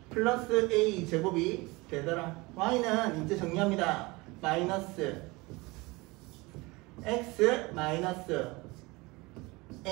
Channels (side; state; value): left; quieter; 23.8 dB